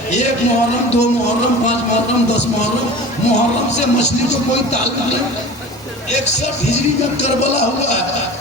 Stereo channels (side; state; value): both; normal; correlation 0.37